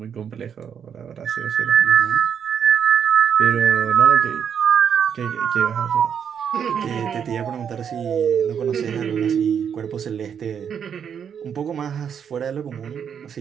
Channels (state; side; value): quieter; left; 7.8 dB